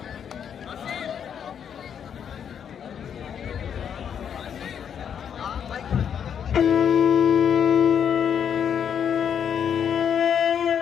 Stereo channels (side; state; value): right; quieter; 8.1 dB